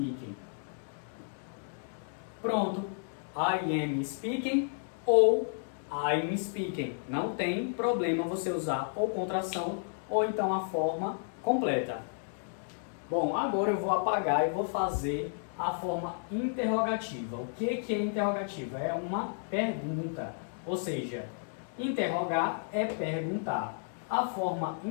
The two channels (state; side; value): silent; right; digital silence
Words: Pronto. I am speaking ou I'm speaking. Não tem problema você usar ou contração ou então a forma completa. Bom, agora eu vou apagar e vou fazer a forma interrogativa. O que é interrogativa? É uma pergunta. Ou seja, interrogar é perguntar. A forma